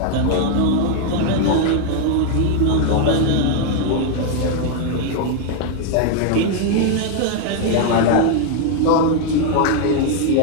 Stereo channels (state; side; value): different; both; correlation 0.00